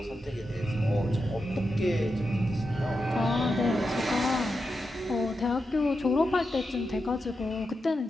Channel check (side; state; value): both; normal; correlation 0.88